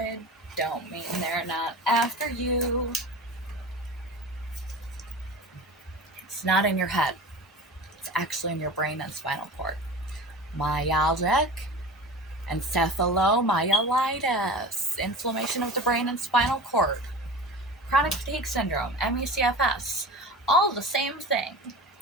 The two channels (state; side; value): normal; both; correlation 0.34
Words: don't mean they're not after you. It's not in your head. It's actually in your brain and spinal cord. Myalgic encephalomyelitis, inflammation of the brain and spinal cord. Chronic fatigue syndrome, ME/CFS, all the same thing.